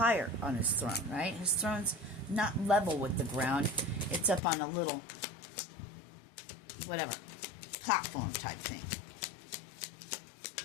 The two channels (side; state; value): right; drops out; at 4.4 s